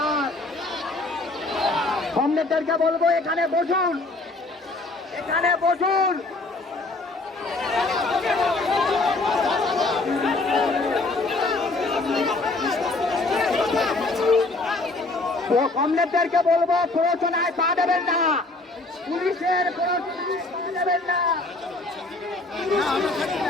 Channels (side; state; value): right; quieter; 3.1 dB